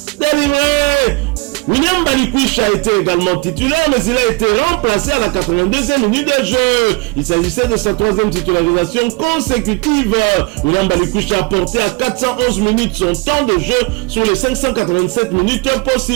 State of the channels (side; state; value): left; quieter; 25.0 dB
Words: délivrée. William Balikwish a été également titulaire, mais il a été remplacé à la 82e minute de jeu. Il s'agissait de sa 3e titularisation consécutive. William Balikwish a porté à 411 minutes son temps de jeu sur les 587 minutes